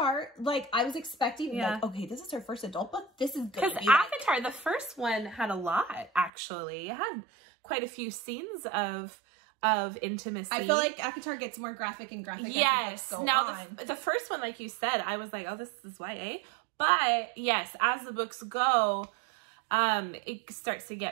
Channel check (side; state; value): left; drops out; at 6.3 s